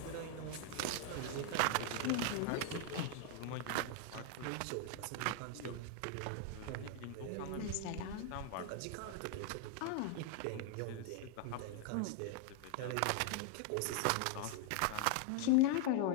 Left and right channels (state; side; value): different; both; correlation 0.00